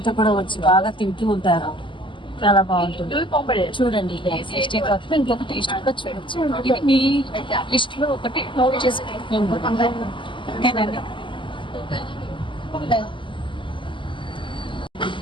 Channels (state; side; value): late; right; 0.24 ms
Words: కూడా వచ్చి బాగా తింటూ ఉంటారు. చాలా బాగుంటుంది. చూడండి, టేస్టే కాకుండా ఇంకొక టేస్ట్ కూడా చూడొచ్చు. ఇది మీ లిస్ట్ లో ఒకటి నోట్ చేసుకుంటున్నాం. ఓకేనండి.